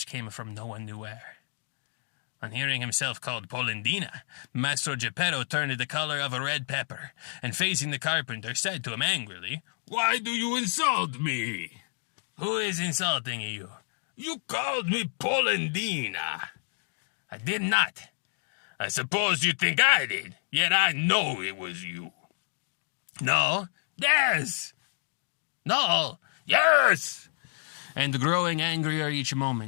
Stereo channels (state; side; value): silent; right; digital silence